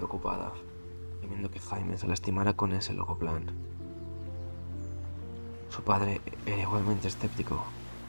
temiendo que Jaime se lastimara con ese loco plan. Su padre era igualmente escéptico.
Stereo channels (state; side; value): inverted; both; correlation -1.00